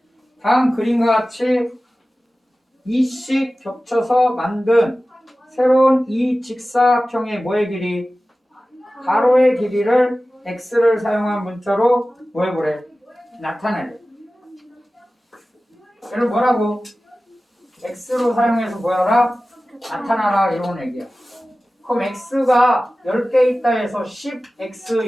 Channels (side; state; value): both; normal; correlation 0.96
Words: 다음 그림과 같이 이씩 겹쳐서 만든 새로운 이 직사각형의 뭐의 길이? 가로의 길이를 x를 사용한 문자로 뭐 해보래? 나타내래. 얘를 뭐라고? x로 사용해서 뭐하라? 나타나라 이런 얘기야. 그럼 x가 10개 있다 해서 10x